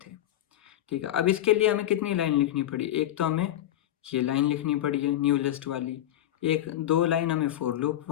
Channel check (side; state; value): right; quieter; 12.7 dB